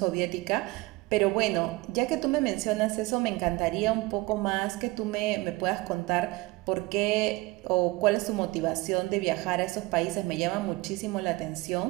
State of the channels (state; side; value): quieter; left; 21.8 dB